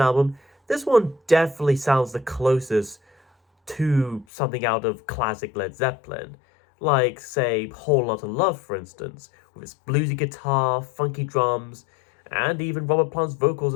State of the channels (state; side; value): drops out; right; at 4.2 s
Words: album, this one definitely sounds the closest to something out of classic Led Zeppelin. Like, say, Whole Lotta Love, for instance, with its bluesy guitar, funky drums, and even Robert Plant's vocals